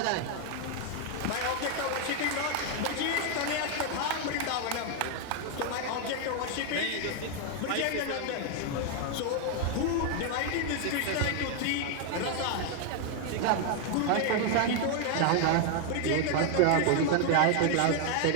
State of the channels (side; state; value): both; different; correlation 0.00